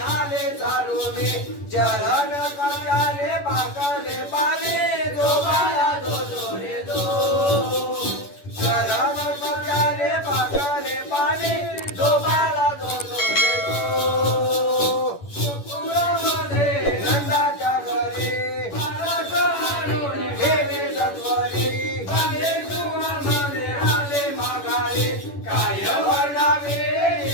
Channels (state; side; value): late; right; 11 ms